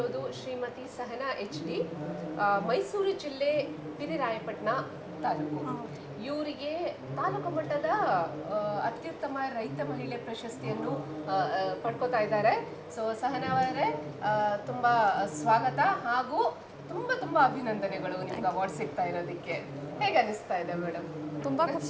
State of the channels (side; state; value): both; identical; correlation 1.00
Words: ಶ್ರೀಮತಿ ಸಹನಾ HD, ಮೈಸೂರು ಜಿಲ್ಲೆ ಪಿರಿರಾಯಪಟ್ಟಣ ತಾಲೂಕು. ಇವರಿಗೆ ತಾಲೂಕು ಮಟ್ಟದ ಅತ್ಯುತ್ತಮ ರೈತ ಮಹಿಳೆ ಪ್ರಶಸ್ತಿಯನ್ನು ಪಡ್ಕೋತಾ ಇದ್ದಾರೆ. ಸೊ ಸಹನಾ ಅವರೇ, ತುಂಬ ಸ್ವಾಗತ ಹಾಗೂ ತುಂಬ ತುಂಬ ಅಭಿನಂದನೆಗಳು ನಿಮ್ಗೆ ಅವಾರ್ಡ್ ಸಿಗ್ತಾ ಇರೋದಕ್ಕೆ. ಹೇಗೆ ಅನಿಸ್ತಾ ಇದೆ ಮೇಡಮ್? ತುಂಬ